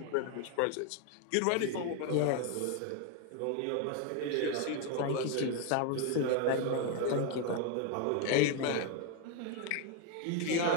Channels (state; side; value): different; both; correlation 0.01